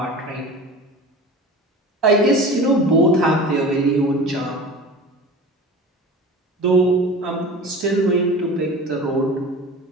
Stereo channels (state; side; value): normal; both; correlation 0.36